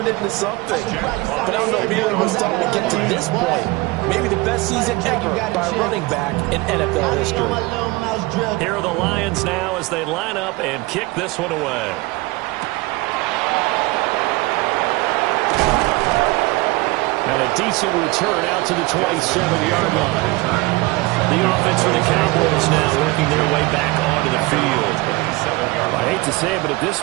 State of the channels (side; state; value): left; quieter; 22.1 dB